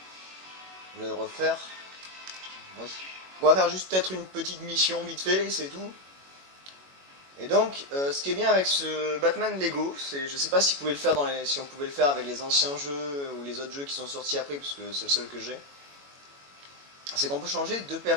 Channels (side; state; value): left; late; 21 ms